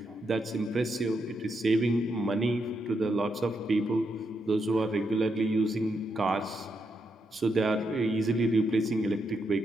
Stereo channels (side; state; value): both; normal; correlation 0.82